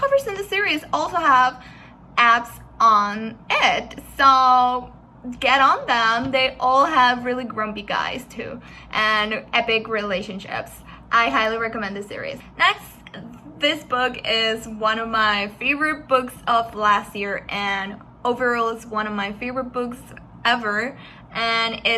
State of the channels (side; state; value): both; identical; correlation 1.00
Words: in the series also have apps on it, so get on them. They all have really grumpy guys too, and epic relationships. I highly recommend this series. Next, this book is one of my favorite books of last year, and overall it's one of my favorite books ever, and